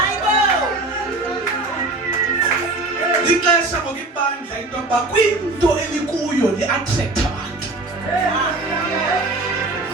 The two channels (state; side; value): quieter; left; 3.0 dB